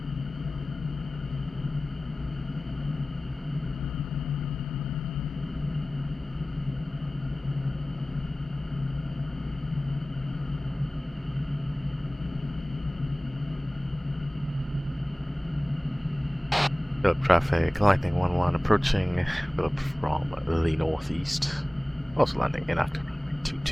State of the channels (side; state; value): both; normal; correlation 0.98